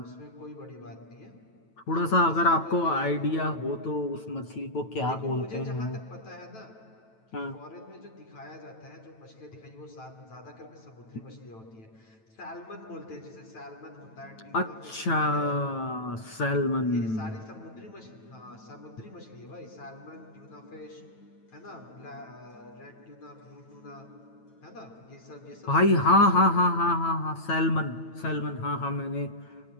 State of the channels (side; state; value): right; late; 9.1 ms